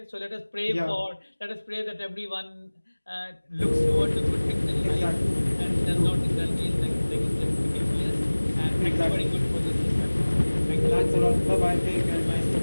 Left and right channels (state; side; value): inverted; both; correlation -1.00